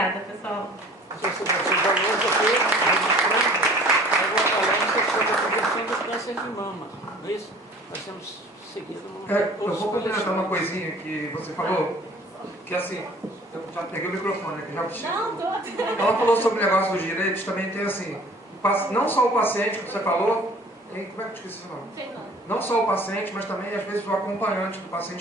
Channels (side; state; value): both; normal; correlation 0.50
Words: pessoal. De mama, não é isso? Nós temos seguido. Eu vou complementar uma coisinha que você falou, que assim, eu já peguei o microfone aqui, já. Não, tô. Ela falou sobre o negócio dos direitos, também tem assim, não só o paciente que você falou, como é que eu esqueci o nome? Não só o paciente, mas também às vezes o acompanhante do